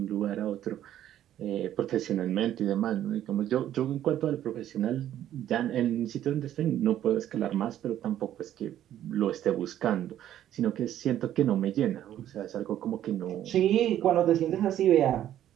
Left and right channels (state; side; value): quieter; left; 11.7 dB